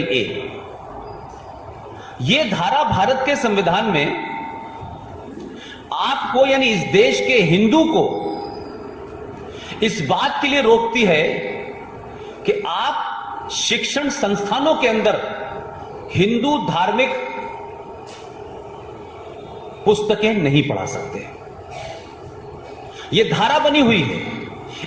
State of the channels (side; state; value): both; identical; correlation 1.00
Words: A। यह धारा भारत के संविधान में आपको यानी इस देश के हिंदू को इस बात के लिए रोकती है कि आप शिक्षण संस्थानों के अंदर हिंदू धार्मिक पुस्तकें नहीं पढ़ा सकते। यह धारा बनी हुई है।